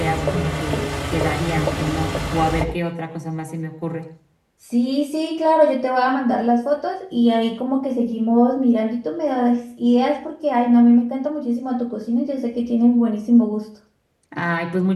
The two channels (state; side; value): identical; both; correlation 1.00